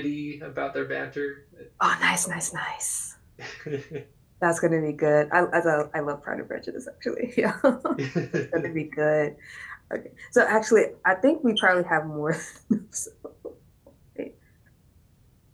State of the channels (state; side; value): identical; both; correlation 1.00